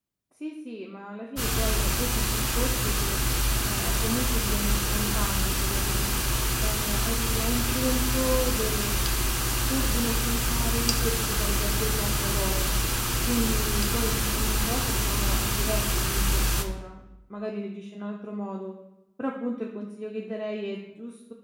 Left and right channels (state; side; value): identical; both; correlation 1.00